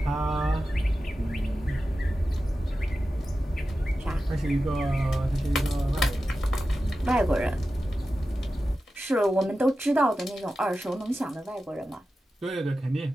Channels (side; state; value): both; normal; correlation 0.93